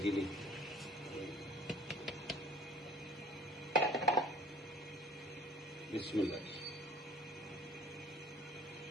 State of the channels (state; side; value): normal; both; correlation 0.49